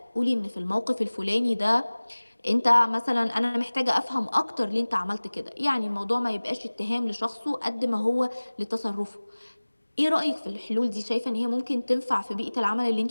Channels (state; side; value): inverted; both; correlation -1.00